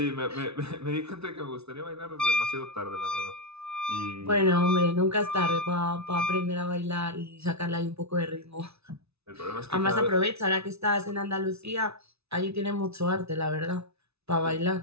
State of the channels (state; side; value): late; left; 0.80 ms